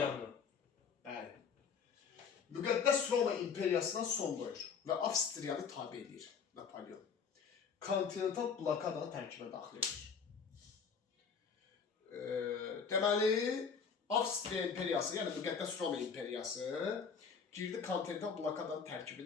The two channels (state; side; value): quieter; right; 6.2 dB